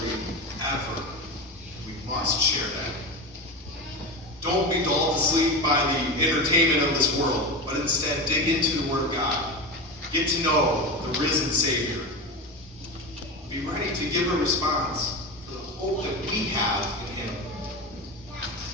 ever. We must share that. Don't be dulled to sleep by the entertainment of this world, but instead dig into the Word of God. Get to know the risen Savior. Be ready to give a response for the hope that we have in Him.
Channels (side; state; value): both; normal; correlation 0.22